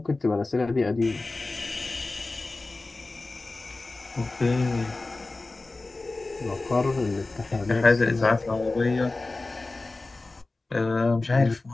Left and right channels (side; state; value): right; quieter; 3.3 dB